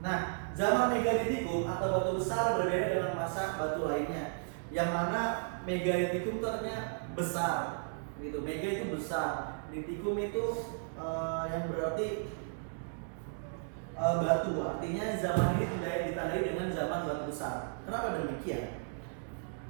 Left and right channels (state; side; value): silent; left; digital silence